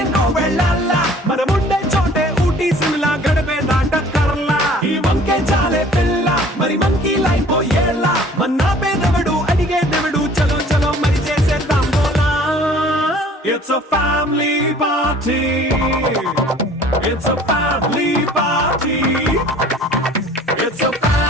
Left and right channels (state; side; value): normal; both; correlation 0.51